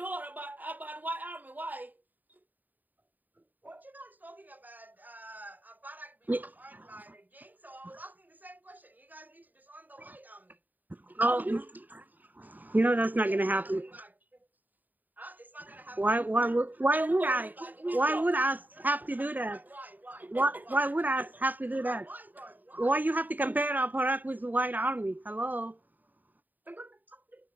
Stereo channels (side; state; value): left; late; 0.086 ms